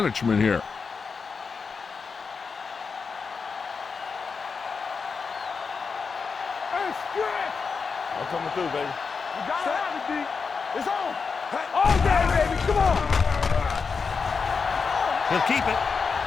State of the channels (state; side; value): quieter; right; 5.2 dB